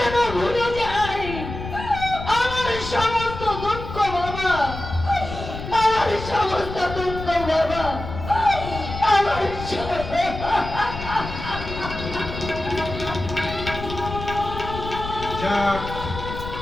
ভুলে যাই আমার সমস্ত দুঃখ বাবা, আমার সমস্ত দুঃখ বাবা, আমার যাক,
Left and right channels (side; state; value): left; noise; rumble, 9 dB below the sound